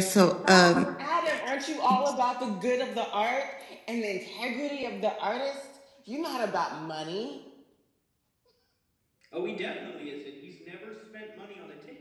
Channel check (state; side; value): identical; both; correlation 1.00